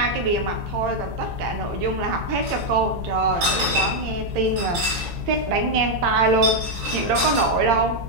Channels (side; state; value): left; late; 17 ms